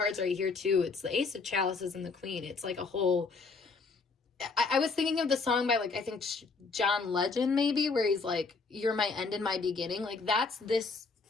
right here too. It's the Ace of Chalices and the Queen. It's like a whole, I was thinking of the song by like, I think John Legend maybe, where he's like, you're my end and my beginning. Like that's this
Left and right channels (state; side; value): quieter; right; 4.3 dB